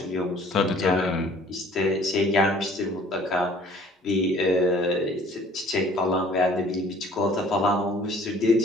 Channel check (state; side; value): normal; both; correlation 0.53